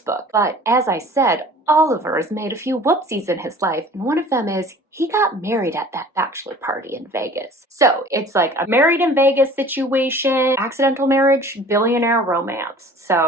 book. But as I said, Oliver has made a few whoopsies in his life, and one of them is he got married at that bachelor party in Vegas. So it's like a married in Vegas situation, accidental marriage, billionaire romance.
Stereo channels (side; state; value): both; normal; correlation 0.46